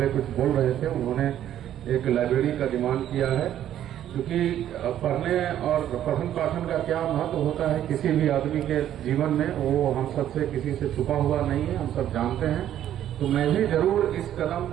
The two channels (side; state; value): left; quieter; 11.3 dB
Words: कुछ बोल रहे थे, उन्होंने एक लाइब्रेरी का डिमांड किया है, क्योंकि पढ़ने और पठन पाठन का क्या महत्व होता है किसी भी आदमी के जीवन में, वो हम सबसे किसी से छुपा हुआ नहीं है, हम सब जानते हैं। तो मैं भी जरूर इस कदम